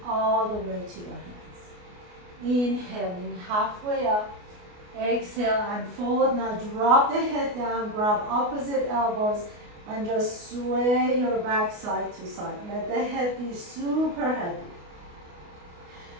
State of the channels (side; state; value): left; late; 28 ms